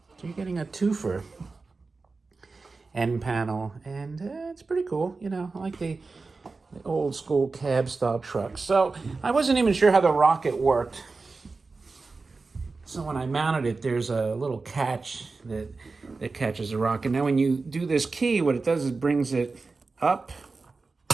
So you're getting a twofer. End panel, and it's pretty cool. I like the old school cab style truck. So I wasn't even sure how the rocket worked. So when I mounted it, there's a little catch that catches the rocket. Now when you do this key, what it does is brings it up.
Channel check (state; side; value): quieter; left; 4.0 dB